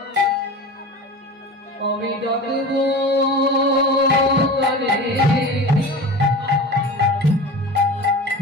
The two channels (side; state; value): both; normal; correlation 0.33